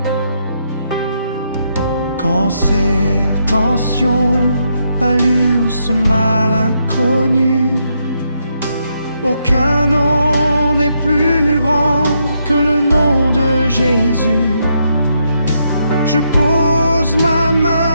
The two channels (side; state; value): both; inverted; correlation -0.78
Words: Cancer, tension, palu ou ce mal inconnu, aucun nom n'est plus grand que le nom de Jésus. Je pose ma